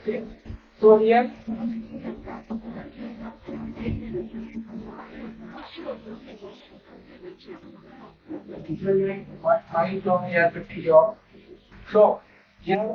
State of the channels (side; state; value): both; identical; correlation 1.00